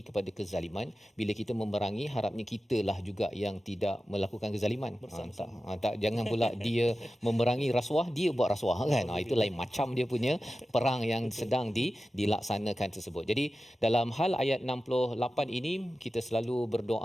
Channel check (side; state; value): both; normal; correlation 0.94